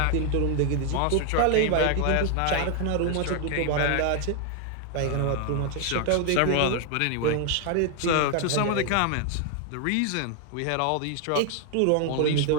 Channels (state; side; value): different; both; correlation 0.00